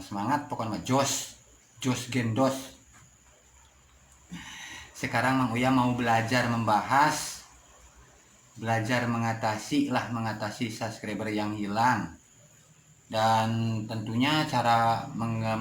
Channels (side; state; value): both; identical; correlation 1.00